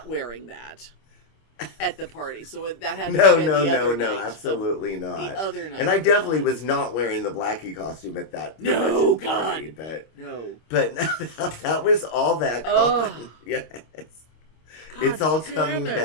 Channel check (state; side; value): late; right; 26 ms